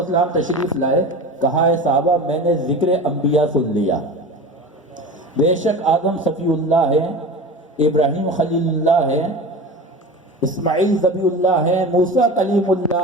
تشریف لائے، کہا ہے صحابہ میں نے ذکر انبیاء سن لیا، بے شک آدم صفی اللہ ہے، ابراہیم خلیل اللہ ہے، اسماعیل ذبیح اللہ ہے، موسیٰ کلیم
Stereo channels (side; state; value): both; normal; correlation 0.32